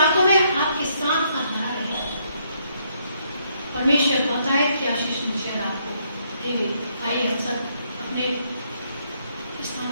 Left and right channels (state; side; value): inverted; both; correlation -0.72